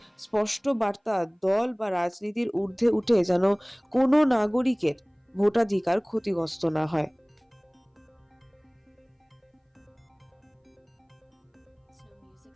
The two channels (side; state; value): both; identical; correlation 1.00